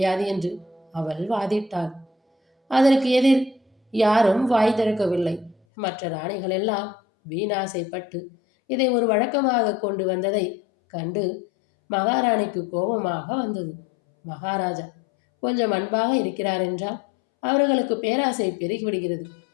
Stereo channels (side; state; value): right; drops out; at 5.6 s